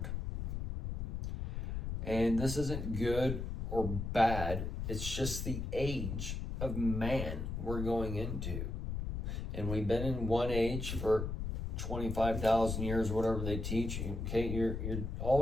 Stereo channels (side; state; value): left; noise; rumble, 3 dB below the sound